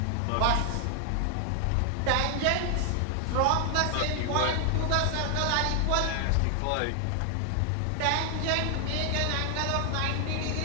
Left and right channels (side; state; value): both; different; correlation 0.00